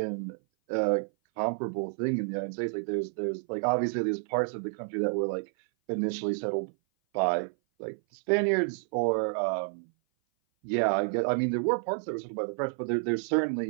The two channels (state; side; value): silent; left; 56 dB below the other